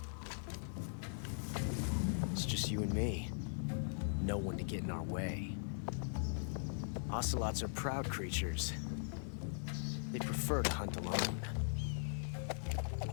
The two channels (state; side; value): silent; right; 51 dB below the other